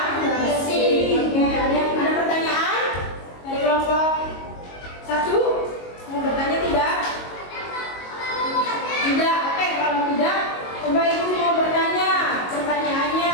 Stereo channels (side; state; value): right; late; 22 ms